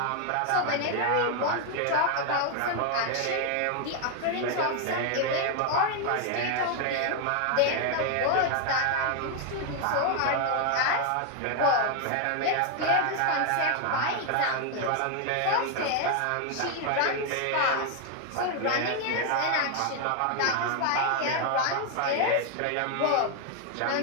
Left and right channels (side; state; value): both; different; correlation 0.00